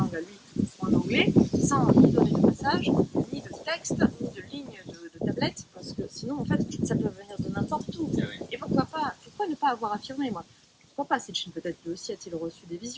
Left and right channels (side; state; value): both; identical; correlation 1.00